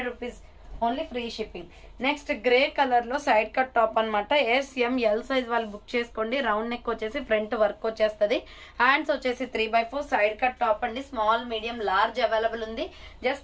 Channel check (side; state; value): both; identical; correlation 1.00